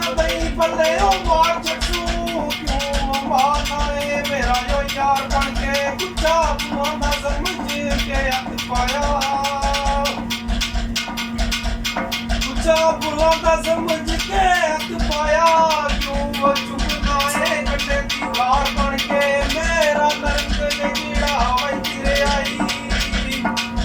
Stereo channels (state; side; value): identical; both; correlation 1.00